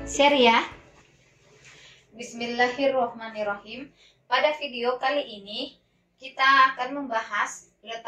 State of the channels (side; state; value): both; identical; correlation 1.00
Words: share ya. Bismillahirrahmanirrahim. Pada video kali ini kita akan membahas